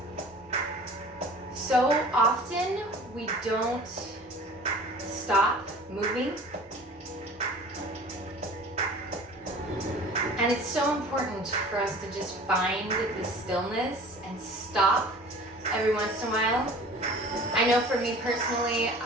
So often we don't stop moving. And it's so important for us to just find the stillness and stop every once in a while. I know for me personally,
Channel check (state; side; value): normal; both; correlation 0.44